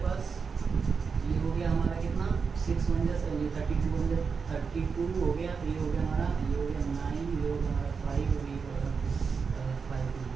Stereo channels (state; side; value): quieter; left; 5.5 dB